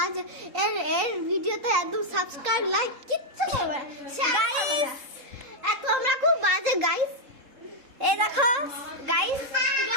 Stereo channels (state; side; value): late; left; 3.7 ms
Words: এর ভিডিওতে একদম সাবস্ক্রাইব লাইক কিচ্ছু করবে না গাইস। তোমরা খুব বাজে গাইস। এই দেখো গাইস,